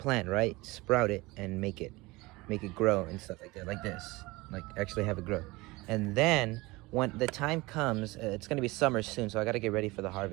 right? Sprout it and make it grow and stuff like that, like this, like actually have it grow. And then when the time comes, it's gonna be summer soon, so I gotta get ready for the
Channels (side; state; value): left; quieter; 22.1 dB